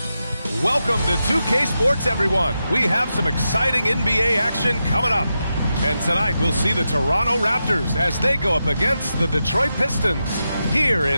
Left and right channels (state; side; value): inverted; both; correlation -0.88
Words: Welcome to 2K Sports, everyone. We have some exciting NBA action coming up. And tonight we'll see the Toronto Raptors as they go up against the Detroit Pistons here